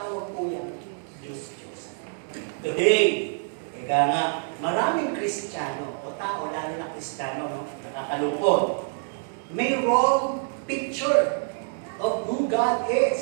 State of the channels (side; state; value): left; silent; digital silence